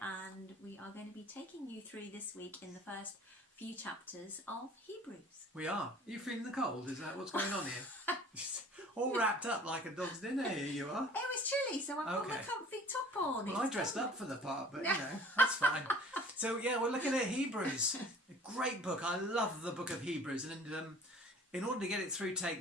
we are going to be taking you through this week in the first few chapters of Hebrews. We are. Are you feeling the cold? Is that what's going on here? All wrapped up like a dog's dinner, here you are. It was chilly, so I've got my comfy top on. Well, I dressed up for the part, but you know, that's fine. So yeah, we're looking at Hebrews. A great book. I love the book of Hebrews, and in order to get it through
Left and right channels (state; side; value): normal; both; correlation 0.48